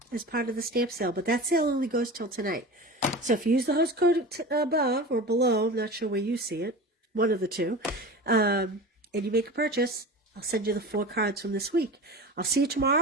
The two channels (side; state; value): both; normal; correlation 0.32